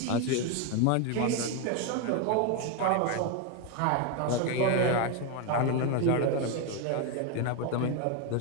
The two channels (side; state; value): both; different; correlation 0.02